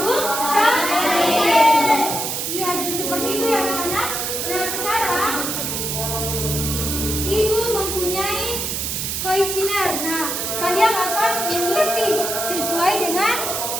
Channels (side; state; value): right; noise; hiss, 2 dB below the sound